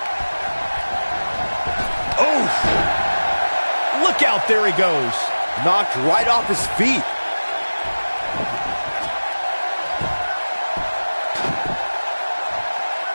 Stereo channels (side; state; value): both; inverted; correlation -1.00